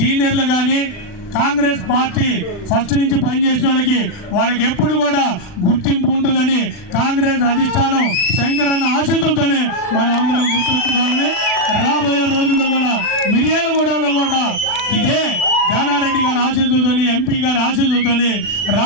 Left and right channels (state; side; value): late; right; 40 ms